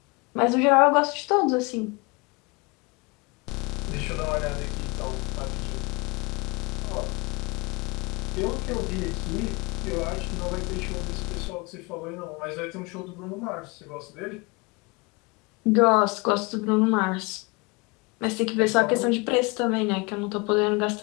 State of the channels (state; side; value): quieter; right; 27.9 dB